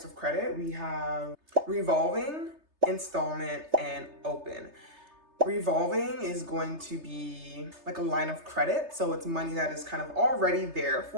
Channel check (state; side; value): late; left; 3.3 ms